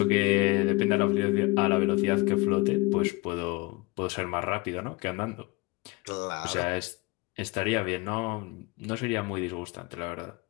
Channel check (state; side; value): quieter; right; 23.3 dB